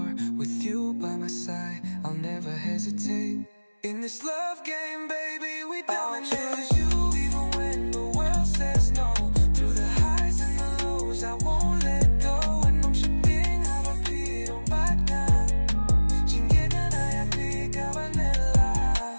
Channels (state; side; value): inverted; both; correlation -1.00